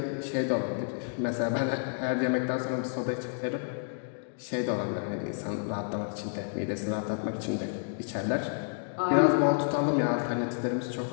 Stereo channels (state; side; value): silent; right; digital silence